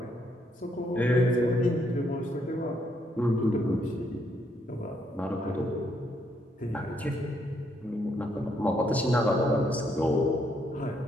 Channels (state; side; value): normal; both; correlation 0.73